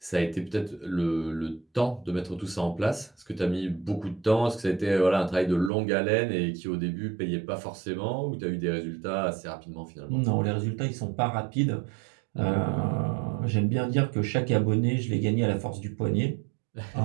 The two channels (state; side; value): drops out; left; at 5.7 s